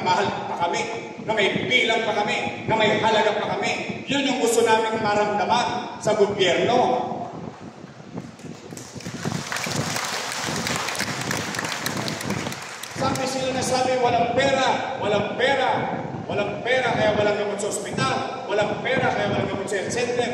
mahal pa kami, na may bilang pa kami, na may halaga pa kami. Yun yung gusto namin maramdaman sa gobyerno. Sabi sila na sabi, walang pera, walang pera. Walang pera kaya walang gamot sa ospital. Walang pera kaya walang gamot sa health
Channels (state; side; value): identical; both; correlation 1.00